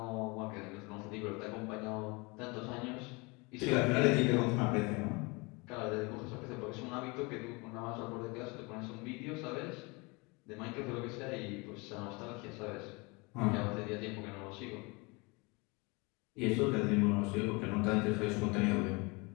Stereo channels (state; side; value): quieter; right; 27.5 dB